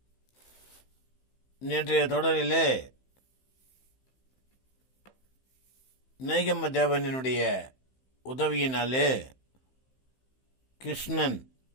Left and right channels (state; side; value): late; right; 15 ms